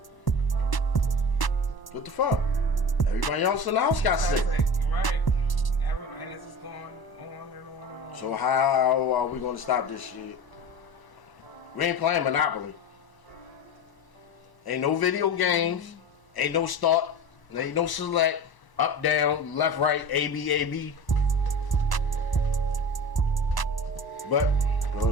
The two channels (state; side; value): late; right; 1.0 ms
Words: what the fuck? Everybody else in the house got sick. Right. And this is going on and on and on. So how are we going to stop this shit? We ain't playing Monopoly. Ain't no video games. Ain't no start. Ain't no select. Up, down, left, right, A, B, A, B. But